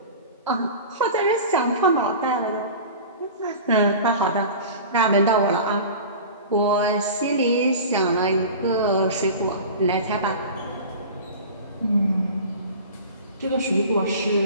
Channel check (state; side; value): inverted; both; correlation -0.36